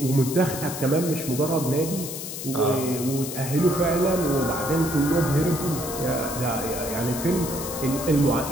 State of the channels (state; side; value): noise; left; hiss, 8 dB below the sound